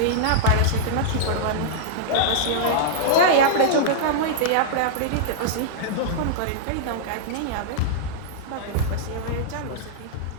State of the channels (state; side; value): different; both; correlation -0.02